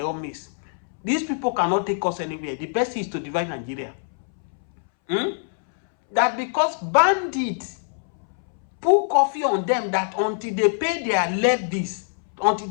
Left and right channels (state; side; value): silent; right; 63 dB below the other